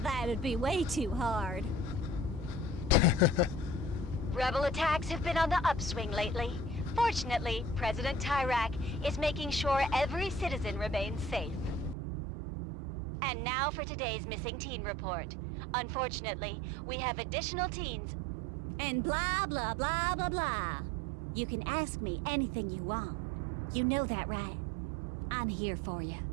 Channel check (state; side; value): drops out; left; at 12.0 s